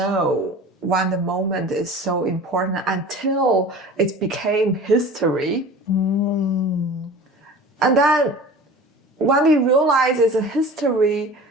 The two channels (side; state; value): both; normal; correlation 0.39